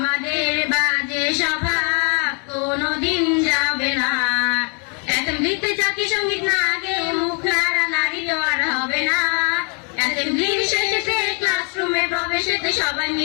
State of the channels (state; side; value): quieter; right; 36.7 dB